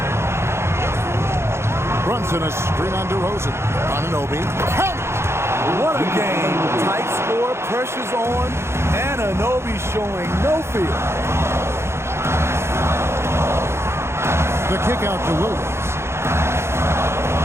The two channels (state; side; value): late; left; 0.13 ms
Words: Brunson a screen on DeRozan. Anunoby. Count it! What a game. Tight score, pressure's on, and Anunoby showing no fear. The kick out to Williams.